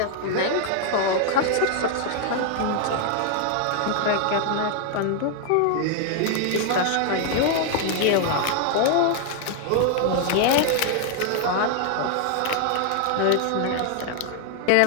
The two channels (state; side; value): different; both; correlation 0.00